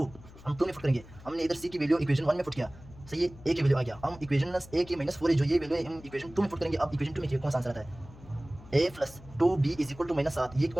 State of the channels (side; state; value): left; noise; hum, 20 dB below the sound